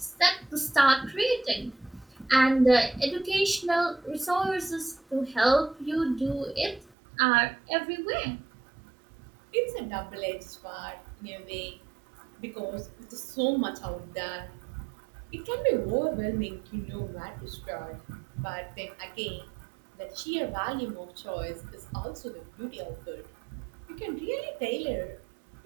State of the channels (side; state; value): left; drops out; at 6.9 s